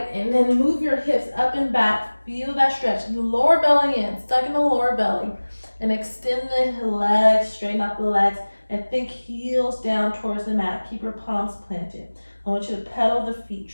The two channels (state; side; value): inverted; both; correlation -1.00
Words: And then move your hips up and back. Feel that stretch. Lower belly in. Stuck in the lower belly. And extend the legs, straighten out the legs, and think heels down towards the mat. Keep your palms planted. I want you to pedal the feet.